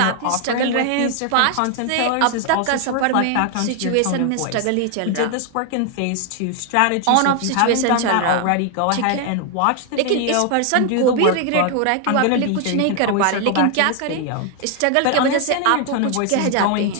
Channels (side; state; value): both; different; correlation 0.00